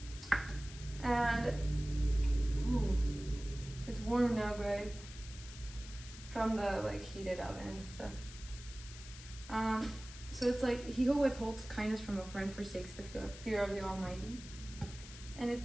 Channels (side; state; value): left; noise; hiss, 15 dB below the sound